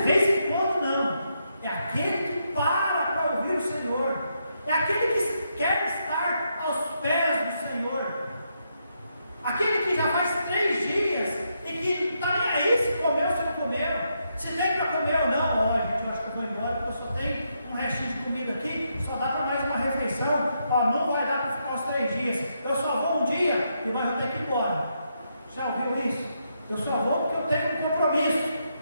vez em quando, não, é aquele que para ouvir o Senhor, é aquele que quer estar aos pés do Senhor, aquele que já faz 3 dias e que não está nem aí se comeu ou se não comeu, se tem para comer ou não. Olha, gente, eu acho que eu vou embora porque eu só tenho um restinho de comida aqui, só dá para mais uma refeição. Ó, não vai dar para ficar os 3 dias, eu só vou um dia e mas eu tenho que ir embora. Já ouviu isso? Eu só vou porque eu tenho um compromisso,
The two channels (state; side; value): inverted; both; correlation -0.80